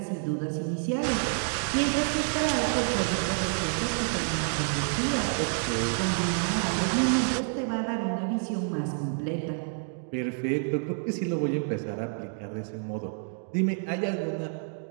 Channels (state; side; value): silent; left; 59 dB below the other